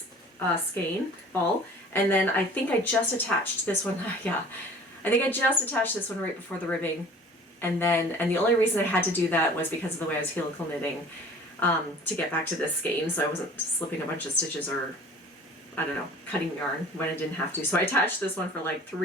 skein ball, and then I think I just attached this one, yeah, I think I just attached this one right before the ribbing, and the only reason I had to do that was because of the way I was helical knitting to get back to this skein, so I wasn't slipping a bunch of stitches or, I don't know, cutting yarn when I didn't have to. So I attached this one for like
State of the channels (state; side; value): normal; both; correlation 0.47